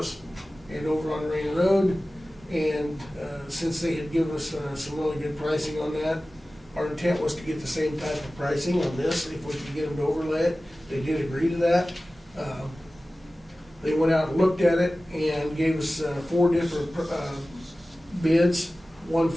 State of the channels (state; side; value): normal; both; correlation 0.96